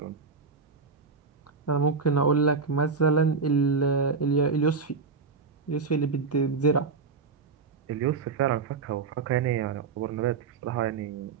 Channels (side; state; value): left; quieter; 4.9 dB